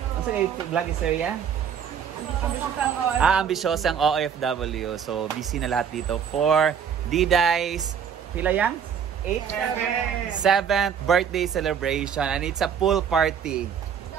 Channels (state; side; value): quieter; left; 7.8 dB